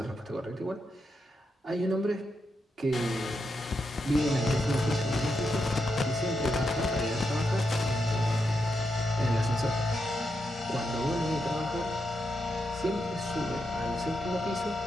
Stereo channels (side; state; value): both; normal; correlation 0.84